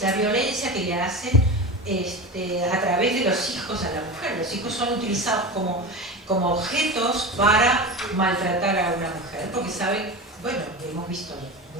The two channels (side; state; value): both; normal; correlation 0.27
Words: la violencia que le hacen a través de los hijos a la mujer. Los hijos son utilizados como objetos para maltratar a una mujer, porque saben, bueno, hemos visto